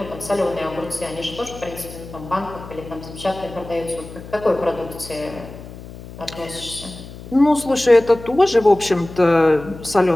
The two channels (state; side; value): noise; left; hum, 15 dB below the sound